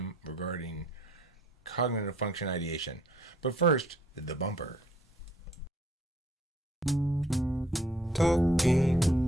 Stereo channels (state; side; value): normal; both; correlation 0.61